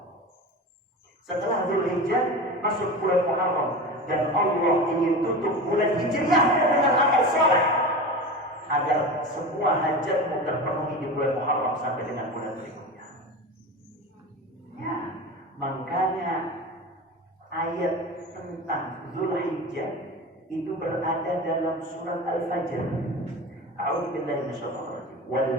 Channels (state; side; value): normal; both; correlation 0.28